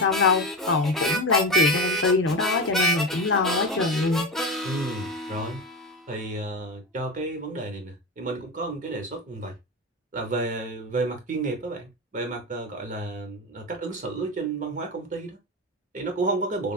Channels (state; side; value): normal; both; correlation 0.20